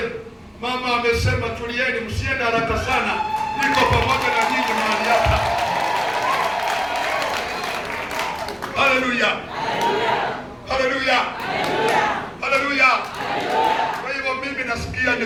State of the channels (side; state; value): both; identical; correlation 1.00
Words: mama amesema tulieni, msiende haraka sana, niko pamoja na nyinyi mahali hapa. Haleluya, haleluya, haleluya. Kwa hivyo mimi nasikia